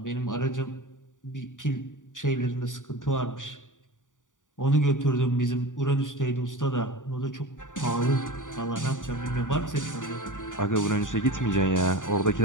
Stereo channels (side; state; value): right; late; 0.87 ms